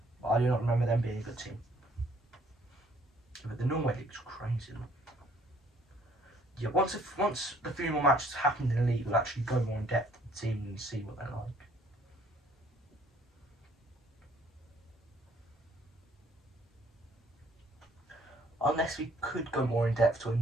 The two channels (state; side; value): normal; both; correlation 0.62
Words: but I do not remember them being a good team. But the Norway League's crazy. Yeah, once the 3 more matches happened in the league, we'll actually go more in depth with the team and see what they're like. Unless we could go more in depth to a